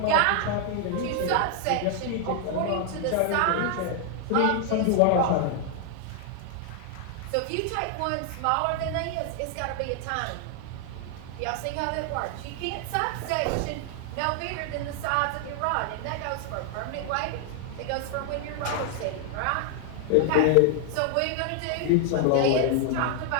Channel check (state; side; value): different; both; correlation 0.00